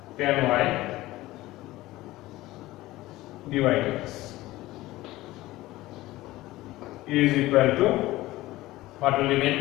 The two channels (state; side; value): quieter; right; 17.6 dB